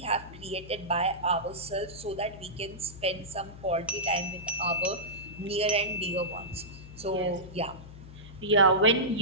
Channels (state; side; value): noise; left; hum, 15 dB below the sound